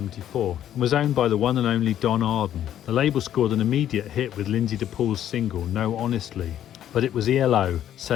and was owned by the one and only Don Arden. The label scored an immediate hit with Lindsay DePaul's single No Honestly, but it was ELO,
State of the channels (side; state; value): right; quieter; 11.0 dB